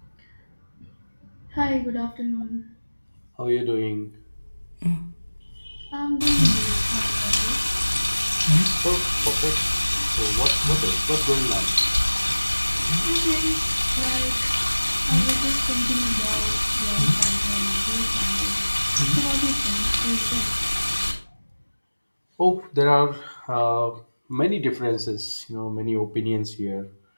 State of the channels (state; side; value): inverted; both; correlation -1.00